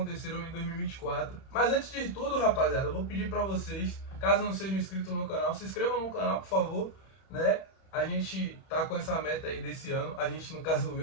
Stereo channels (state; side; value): late; right; 31 ms